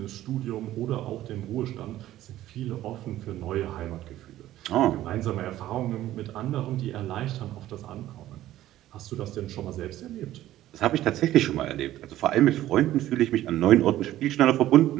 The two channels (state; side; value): quieter; left; 14.0 dB